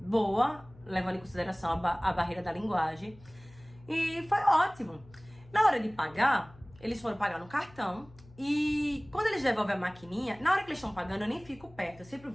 levando em consideração a barreira da linguagem. E foi ótimo. Na hora de pagar, eles foram pagar no cartão. E quando eles devolvem a maquininha, na hora que eles estão pagando, eu nem fico perto. Eu sempre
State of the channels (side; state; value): left; noise; hum, 23 dB below the sound